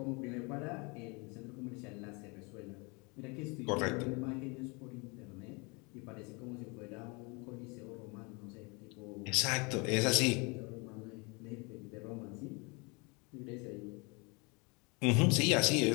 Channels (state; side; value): quieter; right; 29.7 dB